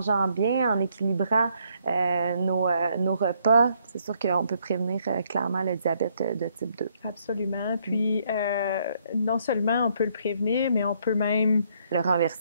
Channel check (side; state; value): both; inverted; correlation -0.70